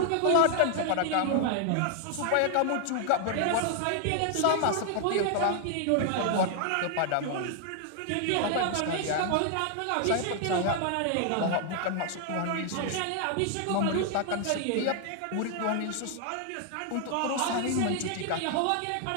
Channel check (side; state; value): both; different; correlation 0.00